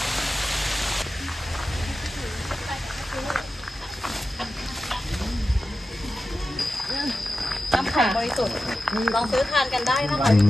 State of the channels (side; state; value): both; normal; correlation 0.93